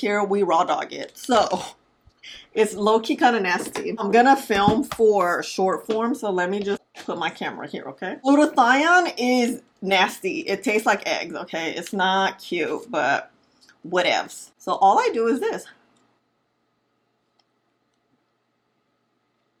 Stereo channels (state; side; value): identical; both; correlation 1.00